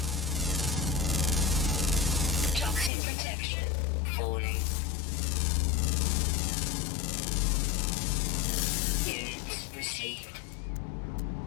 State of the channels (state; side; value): drops out; right; at 2.9 s